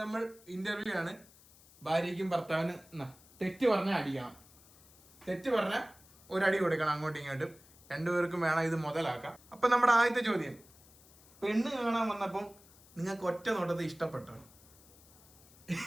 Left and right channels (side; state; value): left; noise; hiss, 25 dB below the sound